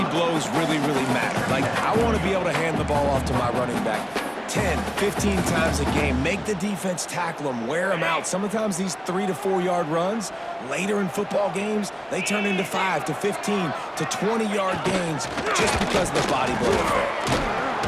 blows really, really matter. Like, I want to be able to hand the ball off to my running back 10, 15 times a game. Make the defense tackle them, wear them out. Sometimes these 3 to 4 yard runs, later in football games, they turn into 5 to 15 to 20 yard gains just because of the body blow effect.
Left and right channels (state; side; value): identical; both; correlation 1.00